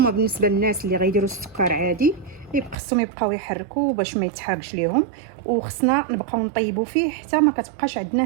بالنسبه للناس اللي غيديروا السكر عادي خصهم يبقاو يحركوا باش ما يتحرقش ليهم. وخصنا نبقاو نطيبوا فيه حتى ما كتبقاش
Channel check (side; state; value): left; drops out; at 2.8 s